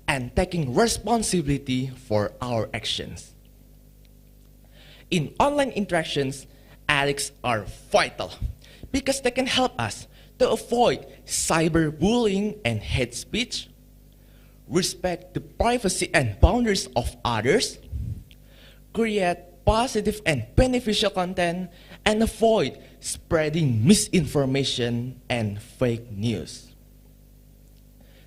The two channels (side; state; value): both; identical; correlation 1.00